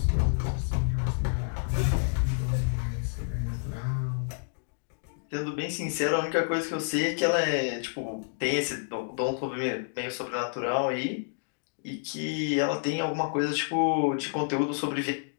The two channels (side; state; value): right; silent; digital silence